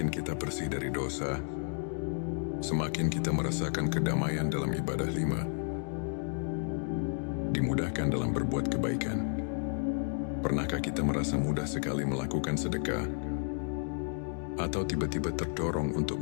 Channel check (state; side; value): silent; right; 56 dB below the other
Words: kita bersih dari dosa, semakin kita merasakan kedamaian dalam ibadah. 5. Dimudahkan dalam berbuat kebaikan. Pernahkah kita merasa mudah sekali melakukan sedekah, atau tiba-tiba terdorong untuk